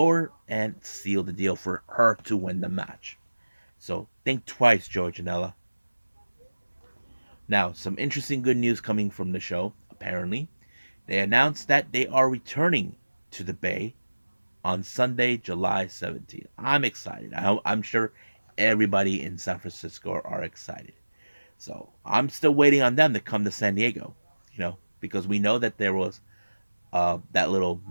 and sealed the deal for her to win the match. So think twice, Joey Janela. Now, some interesting good news coming from the show. Apparently, they announced that they are returning to the Bay on Sunday, July 17th. I'm excited. I'm sure everybody in San Francisco are excited. So I'm still waiting on them to come to San Diego, because we know that there was that little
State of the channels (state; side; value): inverted; both; correlation -1.00